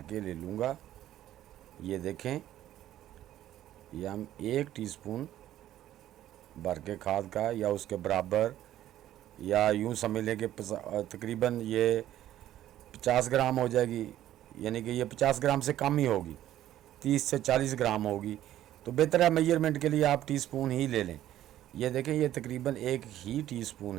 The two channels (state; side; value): quieter; left; 12.8 dB